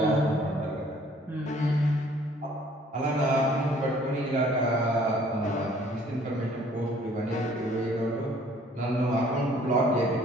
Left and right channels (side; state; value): both; normal; correlation 0.57